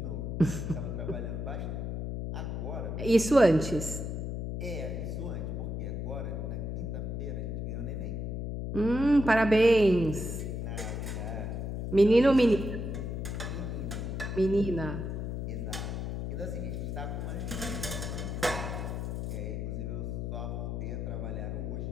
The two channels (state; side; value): noise; left; hum, 3 dB below the sound